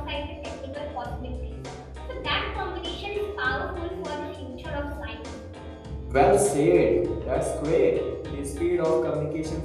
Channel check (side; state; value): both; identical; correlation 1.00